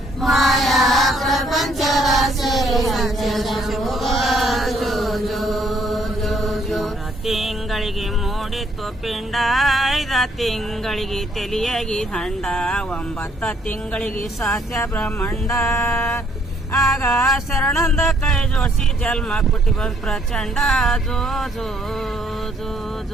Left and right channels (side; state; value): both; normal; correlation 0.67